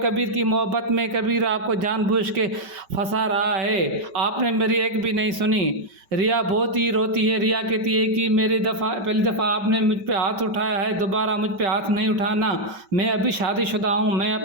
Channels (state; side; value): late; left; 5.2 ms